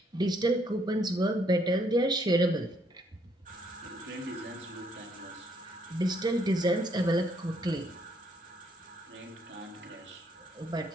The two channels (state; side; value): normal; both; correlation 0.70